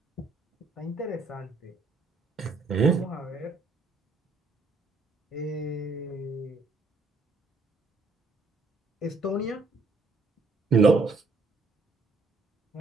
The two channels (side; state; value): left; quieter; 3.5 dB